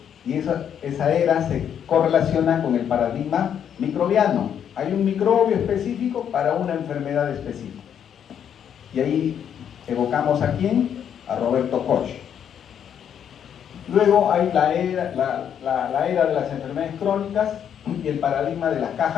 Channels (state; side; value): quieter; right; 8.8 dB